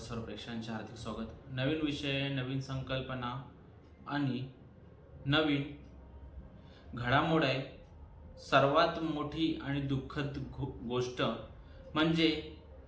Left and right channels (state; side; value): identical; both; correlation 1.00